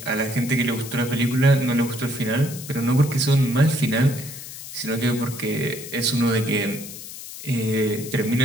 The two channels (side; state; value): left; noise; hiss, 12 dB below the sound